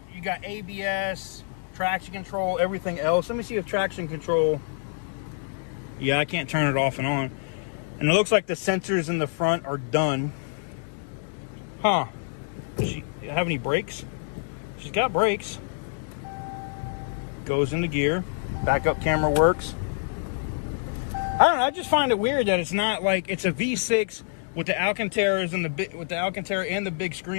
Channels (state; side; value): silent; right; digital silence